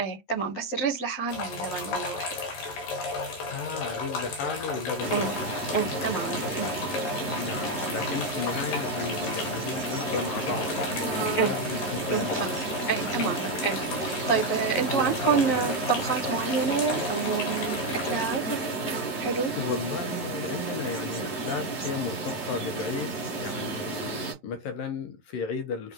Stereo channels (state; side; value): late; right; 11 ms